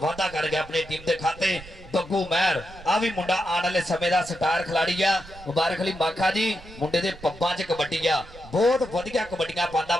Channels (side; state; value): right; noise; rumble, 19 dB below the sound